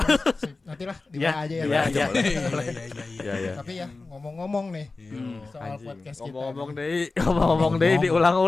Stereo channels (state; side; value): quieter; right; 3.6 dB